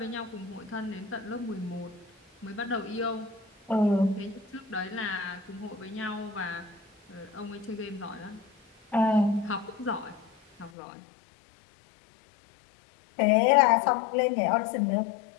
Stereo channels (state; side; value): drops out; right; at 10.7 s